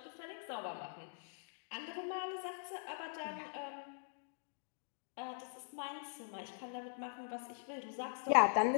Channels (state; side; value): silent; right; digital silence